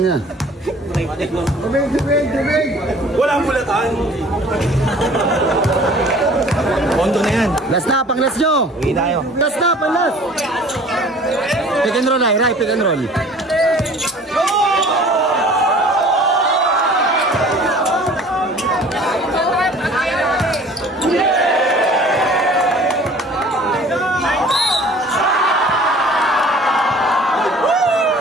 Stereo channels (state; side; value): normal; both; correlation 0.48